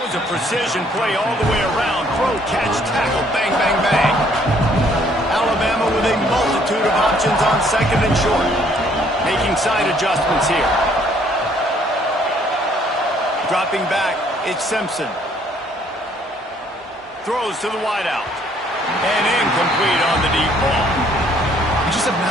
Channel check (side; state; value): both; normal; correlation 0.63